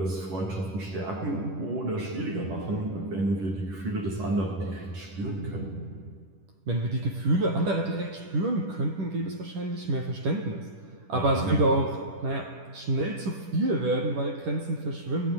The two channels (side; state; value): left; late; 10 ms